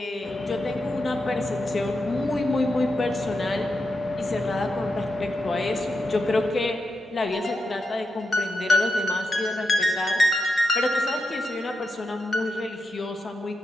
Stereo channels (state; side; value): normal; both; correlation 0.86